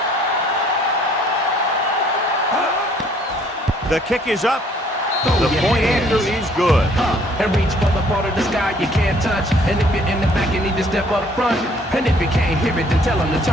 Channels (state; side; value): normal; both; correlation 0.60